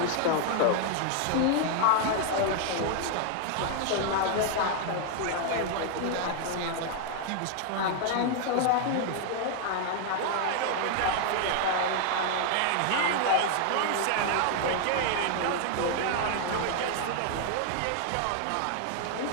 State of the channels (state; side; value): different; both; correlation 0.00